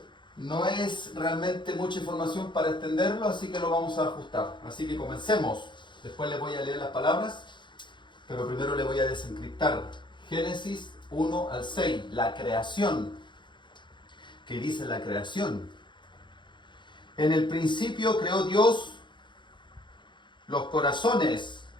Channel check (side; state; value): right; late; 0.23 ms